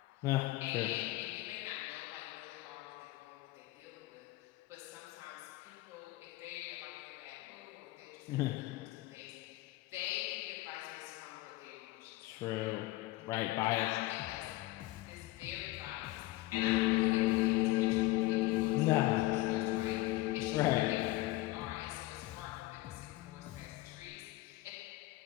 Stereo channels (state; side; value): quieter; right; 18.6 dB